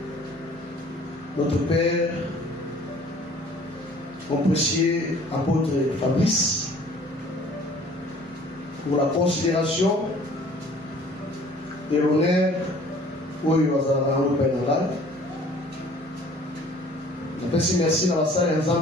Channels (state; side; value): normal; both; correlation 0.52